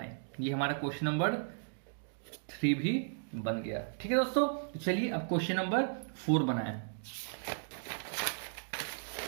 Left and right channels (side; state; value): left; silent; digital silence